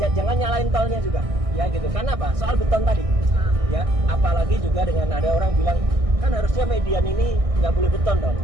jangan nyalain tolnya juga. Ya gitu. Karena apa? Soal beton tadi. Ya, apalagi juga dengan ada orang bilang kan harusnya median ini nggak boleh beton dong.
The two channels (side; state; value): left; late; 1.6 ms